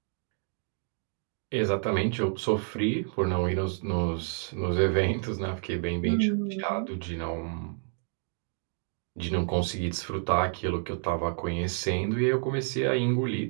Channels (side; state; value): left; silent; 58 dB below the other